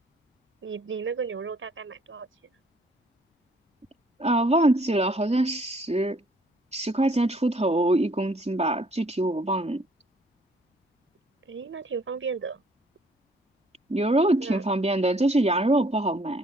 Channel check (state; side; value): normal; both; correlation 0.62